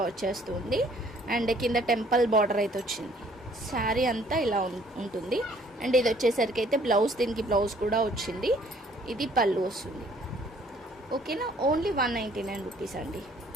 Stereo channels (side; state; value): both; normal; correlation 0.60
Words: వచ్చేస్తుంది. అండ్ కింద టెంపుల్ బార్డర్ అయితే వచ్చింది. శారీ అంతా ఇలా ఉంటుంది. అండ్ ఇది వచ్చేసరికి అయితే బ్లౌజ్, దీనికి బ్లౌజ్ కూడా వచ్చింది. ఇది పళ్ళు వస్తుంది, ఓకేనా. ఓన్లీ 199 రూపీస్ అండి.